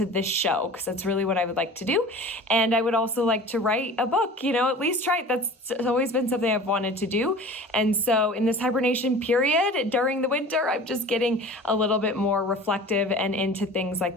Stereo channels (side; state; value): both; normal; correlation 0.40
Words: this show, because that's really what I would like to do. And I would also like to write a book, at least try it. That's always been something I've wanted to do. And so in this hibernation period during the winter, I'm just getting a little bit more reflective and into things